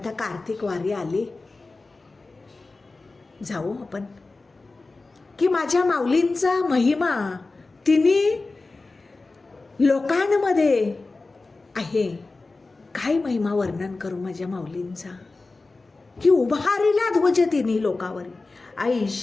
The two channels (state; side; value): quieter; right; 3.5 dB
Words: कार्तिक वारी आली, जाऊ आपण की माझ्या माऊलींचा महिमा तिने लोकांमध्ये आहे. काय महिमा वर्णन करू माझ्या माऊलींचा की उभारीला ध्वज तिन्ही लोकावरी,